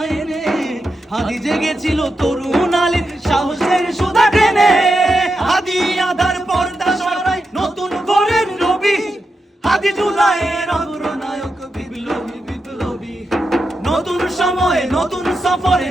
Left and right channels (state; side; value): normal; both; correlation 0.87